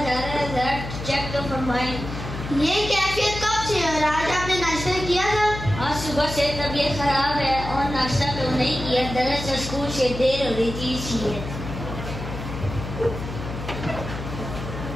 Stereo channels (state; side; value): noise; left; hum, 8 dB below the sound